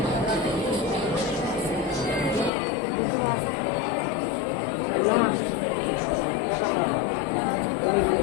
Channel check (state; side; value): drops out; right; at 2.5 s